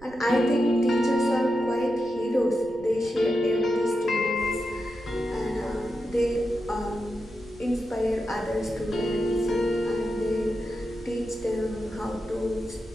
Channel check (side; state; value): right; noise; rumble, 21 dB below the sound